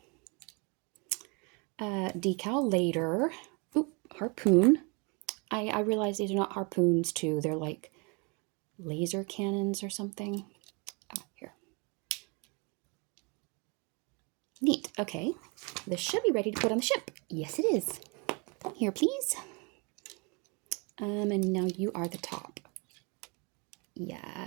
Decal later. Oop, harpoon. I realize these are not harpoons too. They're like laser cannons or something. Ah, here. Neat. Okay. This should be ready to put on the ship. Yes, it is. Here, please. And now you are the top.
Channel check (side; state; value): left; quieter; 31.7 dB